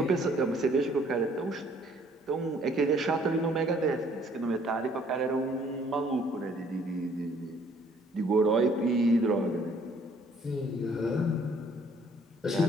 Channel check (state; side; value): normal; both; correlation 0.60